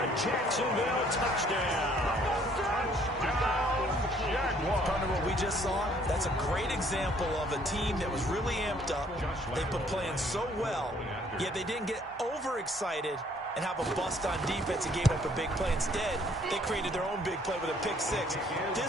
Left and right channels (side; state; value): both; normal; correlation 0.62